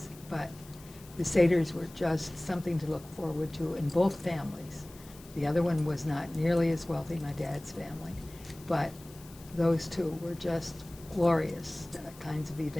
But the Seders were just something to look forward to in both families. The other one was not nearly as wealthy, my dad's family, but those two were just glorious kinds of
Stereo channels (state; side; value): noise; left; hiss, 21 dB below the sound